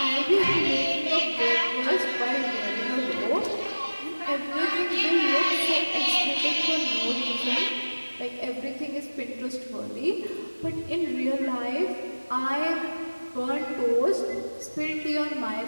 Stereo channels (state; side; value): inverted; both; correlation -1.00